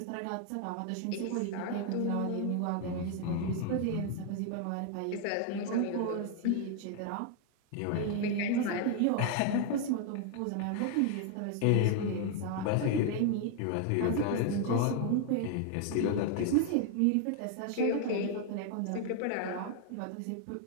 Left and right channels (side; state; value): both; different; correlation 0.00